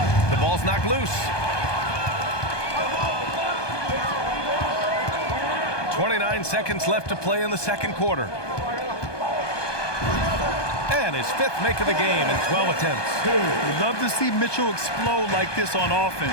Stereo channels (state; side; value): late; right; 1.2 ms